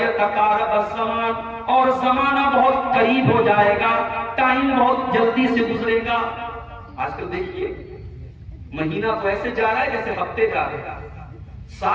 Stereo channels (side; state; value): both; identical; correlation 1.00